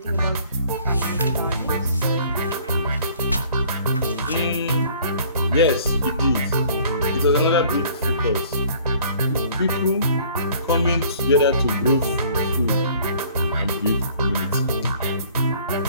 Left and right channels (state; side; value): inverted; both; correlation -0.54